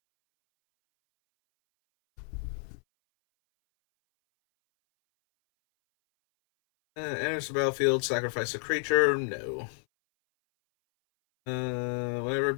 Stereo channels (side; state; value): right; silent; 58 dB below the other